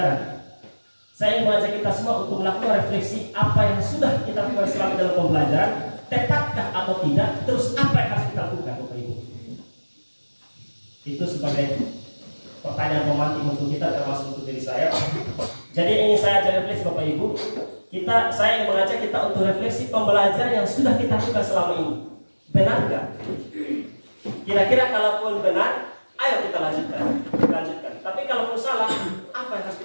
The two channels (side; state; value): both; inverted; correlation -1.00